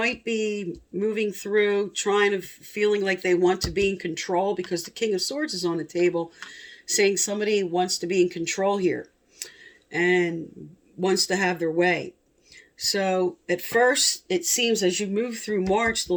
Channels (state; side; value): identical; both; correlation 1.00